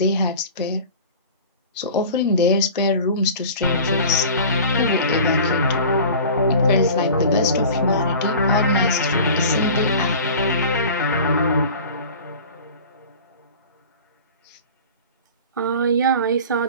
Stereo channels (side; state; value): both; inverted; correlation -0.39